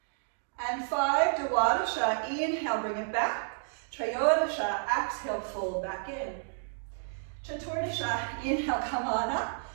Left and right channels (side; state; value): left; silent; digital silence